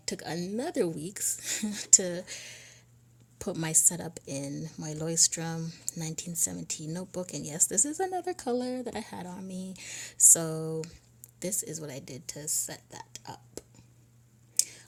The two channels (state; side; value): identical; both; correlation 1.00